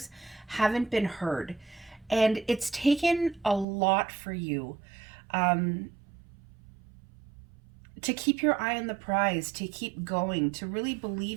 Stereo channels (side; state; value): left; drops out; at 3.7 s